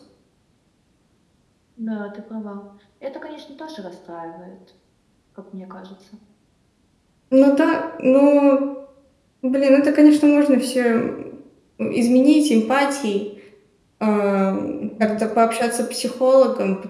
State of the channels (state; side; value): identical; both; correlation 1.00